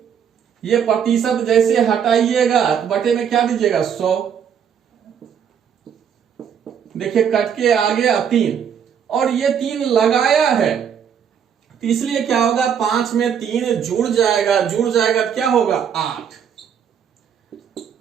ये प्रतिशत जैसे हटाइएगा तो बटे में क्या दीजिएगा, 100। देखिए कट के आ गया 3, और ये 3 लगाया है, तो इसलिए क्या होगा, 5 में 3 जुड़ जाएगा तो क्या होगा, 8।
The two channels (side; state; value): left; quieter; 8.0 dB